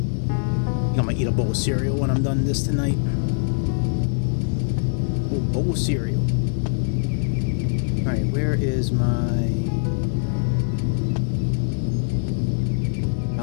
I think I'm gonna eat a bowl of cereal when I'm done this tonight. Oh, bowl of cereal. All right, where is my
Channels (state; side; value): silent; right; digital silence